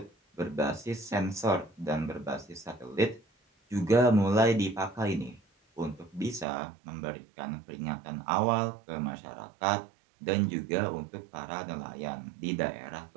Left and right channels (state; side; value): drops out; left; at 6.5 s